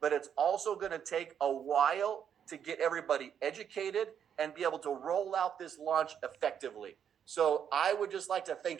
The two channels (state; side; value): quieter; left; 8.5 dB